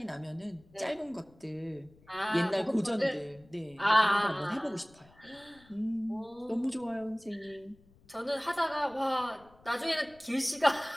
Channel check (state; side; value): noise; left; rumble, 28 dB below the sound